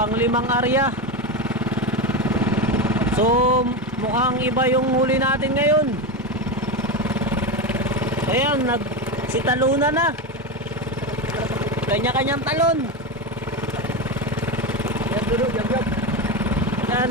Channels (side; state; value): both; normal; correlation 0.16